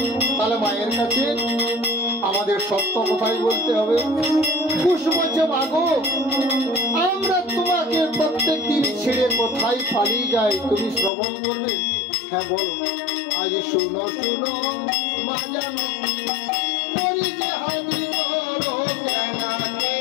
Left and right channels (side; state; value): right; drops out; at 11.1 s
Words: তাহলে মায়ের কাছে আমাদের সত্য কথাই বলতে হবে। কুশ বলছে মাগো, আমরা তোমাকে প্রত্যেক দিন ছেড়ে কোথায় পালিয়ে যাই, তুমি শ্রবণ করবে? হ্যাঁ বলো। আজ শুনো শুনো মা জানো করি যে হাতি করো জানাতে